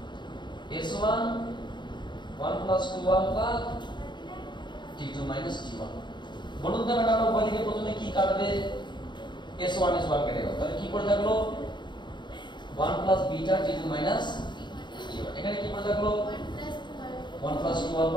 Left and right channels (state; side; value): late; right; 0.22 ms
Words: s1 1 plus 2 alpha t2 minus t1। বলুন তো ম্যাডাম উভয় দিকে প্রথমে কি কাটবে, s1 কেটে গেল, তাহলে কি পড়ে থাকলো 1 plus beta t2 minus t1। এখানে কি পড়ে থাকলো 1 প্লাস 2